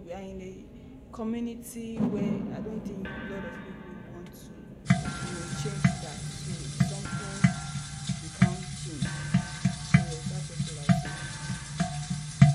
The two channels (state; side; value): identical; both; correlation 1.00